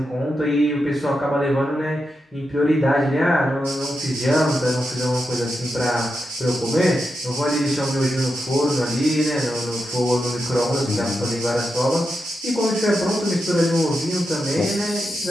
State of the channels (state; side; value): normal; both; correlation 0.87